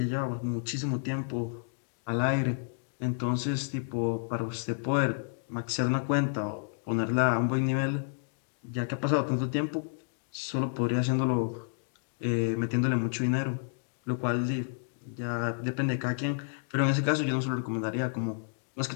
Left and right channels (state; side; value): silent; right; digital silence